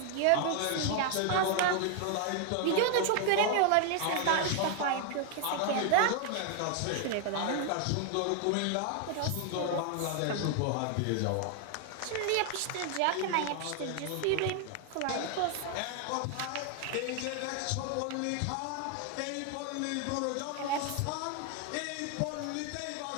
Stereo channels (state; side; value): different; both; correlation 0.00